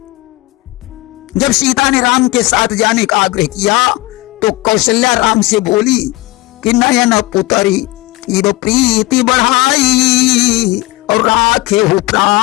जब सीता ने राम के साथ जाने का आग्रह किया तो कौशल्या राम से बोली कि नयन पुतरी इब प्रीति बढ़ाई, और राखे हो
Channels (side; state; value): right; quieter; 20.3 dB